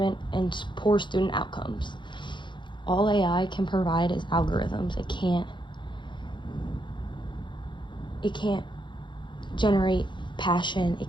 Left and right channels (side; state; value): right; late; 0.23 ms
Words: and poor student outcomes. All AI can provide is algorithms. It can't generate passion. It